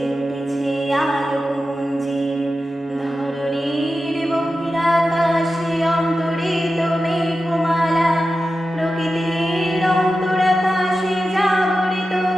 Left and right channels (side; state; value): both; normal; correlation 0.92